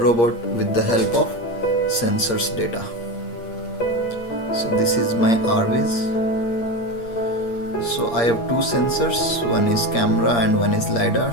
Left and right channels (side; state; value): right; late; 8.6 ms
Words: with the help of sensors data. So this is my RViz. So I have two sensors, one is camera and one is